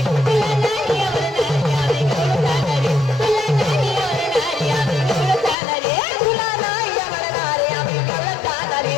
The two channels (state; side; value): drops out; right; at 5.6 s